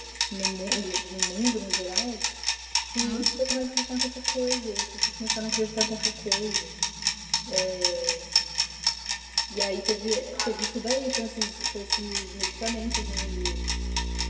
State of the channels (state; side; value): identical; both; correlation 1.00